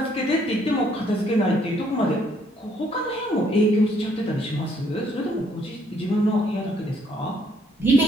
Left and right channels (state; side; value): normal; both; correlation 0.67